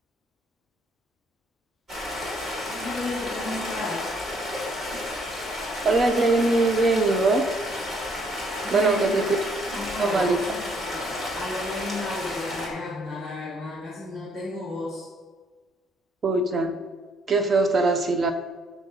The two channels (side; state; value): both; normal; correlation 0.67